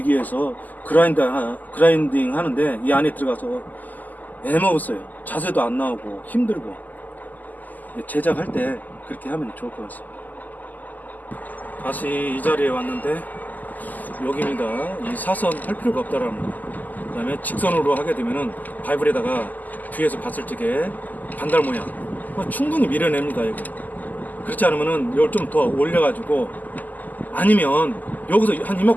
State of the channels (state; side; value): late; right; 0.082 ms